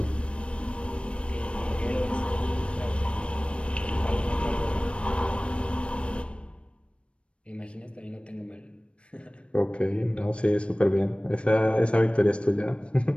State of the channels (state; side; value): late; right; 0.060 ms